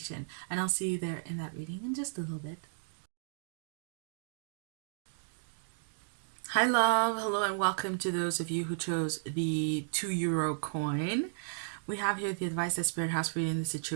and I'll see you there in that reading in just a little bit. Hi love, hello and welcome to those of you who chose the €2 coin. We have here the advice that Spirit has for you in this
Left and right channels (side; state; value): left; silent; digital silence